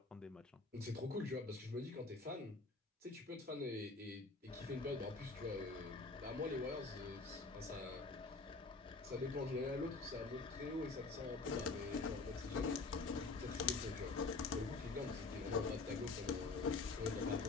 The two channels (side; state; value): right; quieter; 3.8 dB